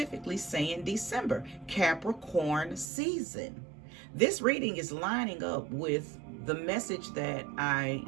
saying December, Capricorn season. This reading is lining up with the message that I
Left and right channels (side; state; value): left; drops out; at 2.9 s